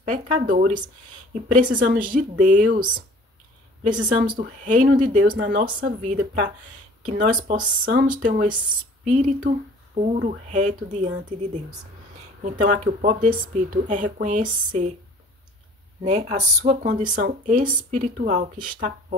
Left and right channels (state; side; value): normal; both; correlation 0.50